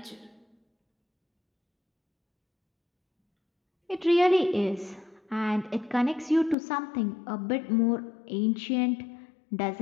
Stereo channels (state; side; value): drops out; right; at 6.6 s